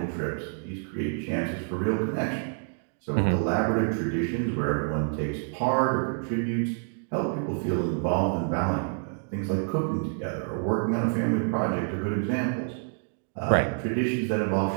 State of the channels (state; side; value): silent; left; 59 dB below the other